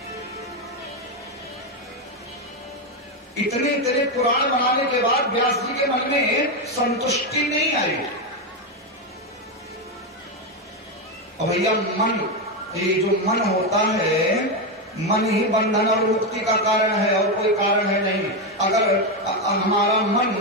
इतने इतने पुराण बनाने के बाद व्यास जी के मन में संतुष्टि नहीं आई। और भैया मन, ये जो मन होता है, मन ही बंधन और मुक्ति का कारण है और कोई कारण है नहीं। अगर हमारा मन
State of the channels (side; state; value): both; normal; correlation 0.08